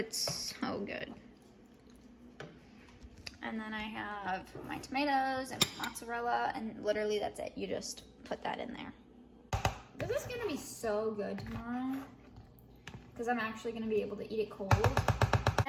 so good. And then I have my tomatoes and mozzarella, and literally that's it. You just put that in there. This is gonna be so good tomorrow because I'm actually gonna be able to eat it cold.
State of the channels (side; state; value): both; identical; correlation 1.00